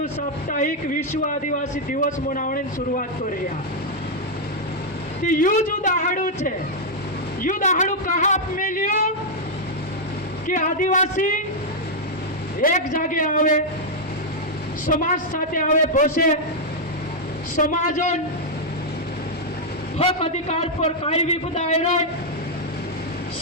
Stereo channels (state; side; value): normal; both; correlation -0.03